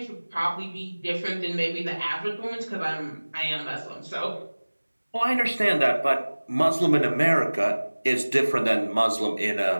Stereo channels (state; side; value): inverted; both; correlation -1.00